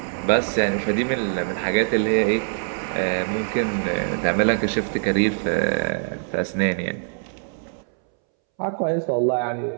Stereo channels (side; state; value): left; silent; 63 dB below the other